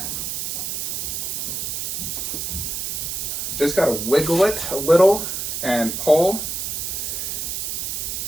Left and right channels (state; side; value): noise; right; hiss, 3 dB below the sound